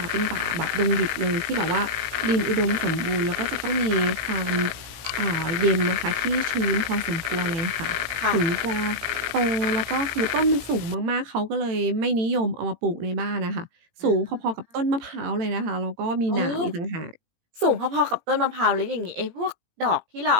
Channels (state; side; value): late; left; 17 ms